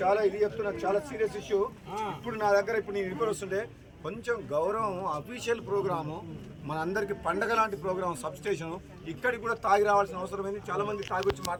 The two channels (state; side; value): identical; both; correlation 1.00